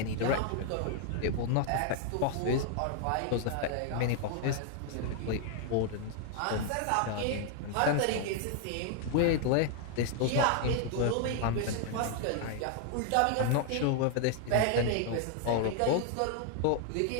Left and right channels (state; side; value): different; both; correlation 0.00